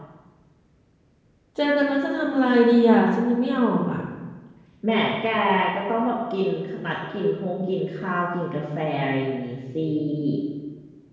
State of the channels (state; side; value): identical; both; correlation 1.00